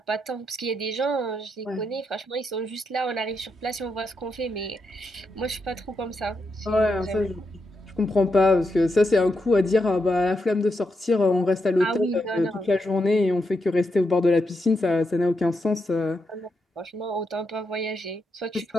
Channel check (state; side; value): normal; both; correlation 0.83